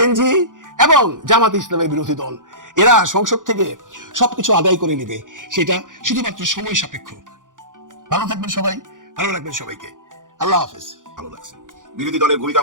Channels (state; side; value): late; left; 0.88 ms